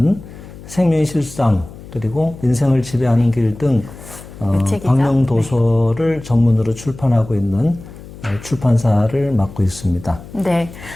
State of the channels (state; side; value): noise; left; hum, 16 dB below the sound